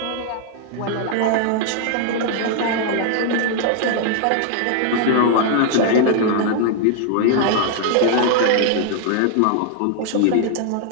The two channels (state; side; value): different; both; correlation 0.00